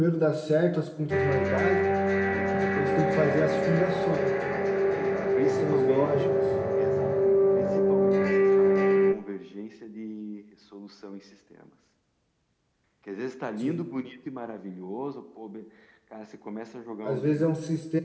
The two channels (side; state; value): both; identical; correlation 1.00